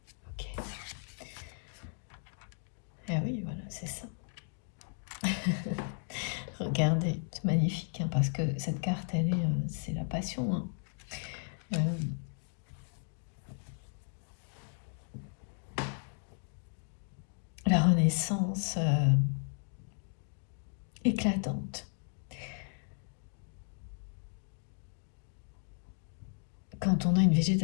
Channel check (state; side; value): silent; right; 54 dB below the other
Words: Ok. Ah oui, voilà, c'est ça. Regardez, c'est magnifique, parce que cette carte, c'est la passion. La renaissance éclatante. Quand on a une